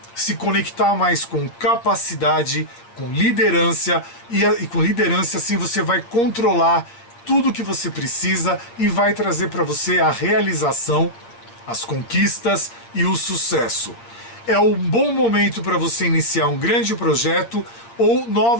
se conectar mais com capacidade, com liderança, e com liderança assim você vai controlar tudo que você precisa e vai trazer para você a realização, as conquistas e o sucesso. É um bom momento para você iniciar um grande projeto ou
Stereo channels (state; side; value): late; right; 8.5 ms